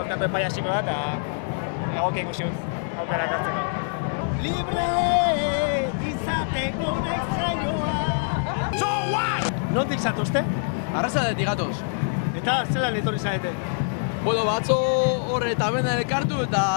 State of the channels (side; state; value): right; silent; digital silence